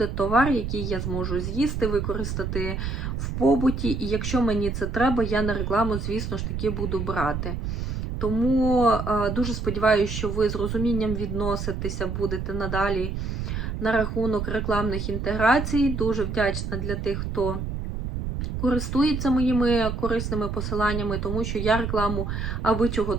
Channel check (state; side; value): noise; right; rumble, 4 dB below the sound